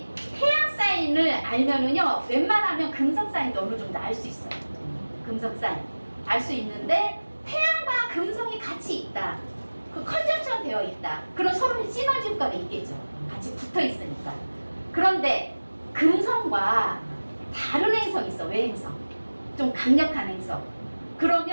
태양 사인을 알면은요 웬만하면 금성 사인도 어느 정도 알 수 있어요. 금성 사인 알 수 있는데 태양과 금성이 같이 있다. 그 컨정션 되어 있다. 그럼 서로 시너지 효과가 있겠죠. 같이 붙어 있으니까. 그런데 금성과 다른 행성이 있어. 외행성. 좀 강력한 행성.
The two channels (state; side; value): inverted; both; correlation -1.00